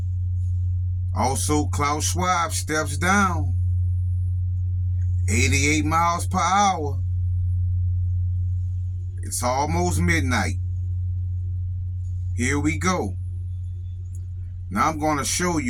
Also, Klaus Schwab steps down. 88 miles per hour. It's almost midnight. Here we go. Now I'm going to show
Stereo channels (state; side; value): identical; both; correlation 1.00